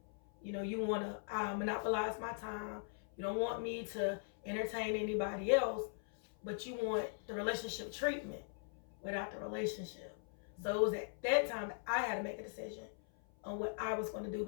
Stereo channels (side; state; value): right; silent; 51 dB below the other